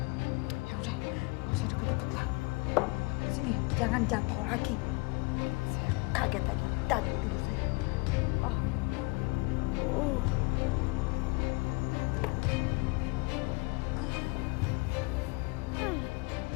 Ya udah, gak usah deket-deket lah. Sini, jangan jatuh lagi. Saya kaget tadi, tidur saya. Oh.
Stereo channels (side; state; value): right; quieter; 26.8 dB